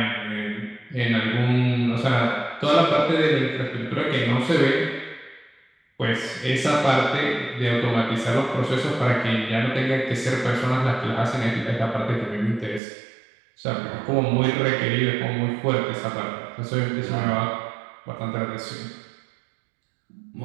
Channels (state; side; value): drops out; left; at 12.8 s